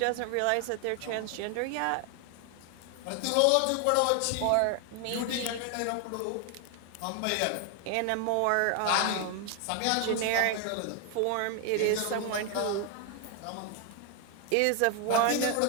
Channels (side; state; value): both; different; correlation 0.00